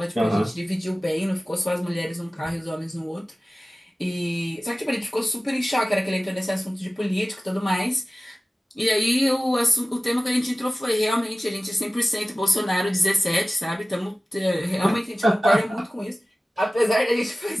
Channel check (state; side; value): normal; both; correlation 0.96